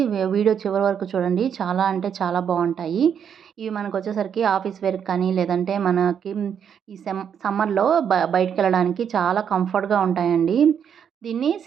వీడియో చివరి వరకు చూడండి. చాలా అంటే చాలా బావుంటాయి. ఇవి మనకొచ్చేసరికి ఆఫీస్ వేర్‌కి కానీ, లేదంటే మనకి ఈ సమ్మర్‌లో బయటికెళ్ళడానికి చాలా కంఫర్ట్‌గా ఉంటాయండి. దీన్ని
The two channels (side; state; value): left; quieter; 8.0 dB